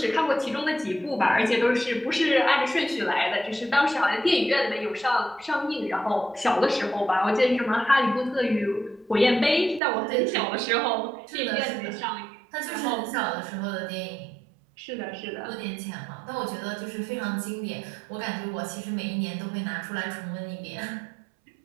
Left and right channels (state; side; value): drops out; left; at 9.8 s